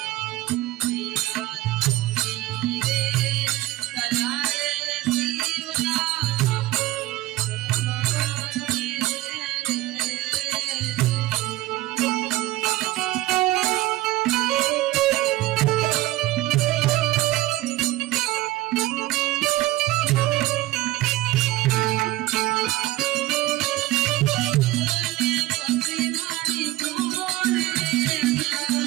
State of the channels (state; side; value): quieter; left; 16.9 dB